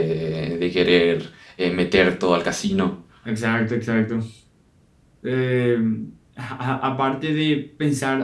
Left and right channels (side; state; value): both; identical; correlation 1.00